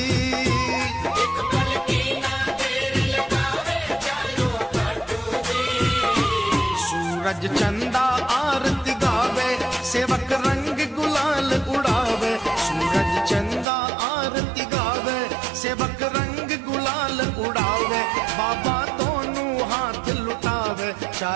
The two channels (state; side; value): drops out; left; at 13.7 s